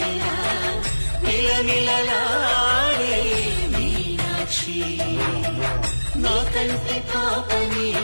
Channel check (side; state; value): both; inverted; correlation -1.00